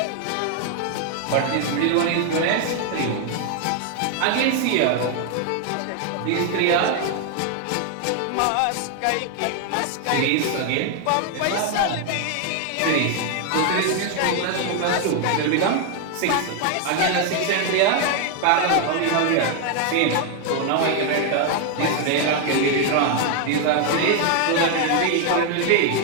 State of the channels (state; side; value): different; both; correlation 0.01